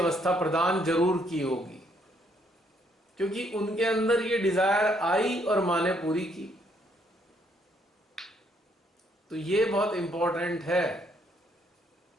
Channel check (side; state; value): both; normal; correlation 0.70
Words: प्रदान जरूर की होगी, क्योंकि उनके अंदर ये डिजायर आई और माँ ने पूरी की। तो ये बहुत इंपॉर्टेंट है।